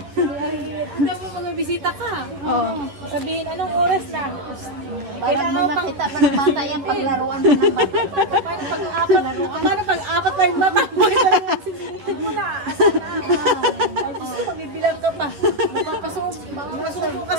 Hindi mo magbibisita ka. Oo. Sabihin, anong oras na? Parang may makita pa ng bata yan, paglaruan pa ng bata. Paano pag-apat pa yung bata mo? Sinitin mo na. Asan na? Ay, gusto ko, magbibilang ka pa. Mapapasubo ka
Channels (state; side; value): late; left; 11 ms